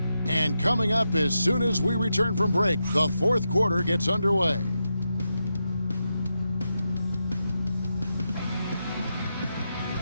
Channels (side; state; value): both; inverted; correlation -0.86